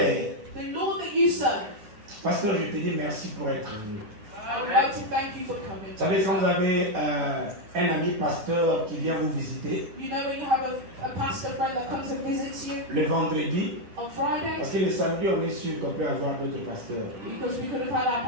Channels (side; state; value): left; late; 10 ms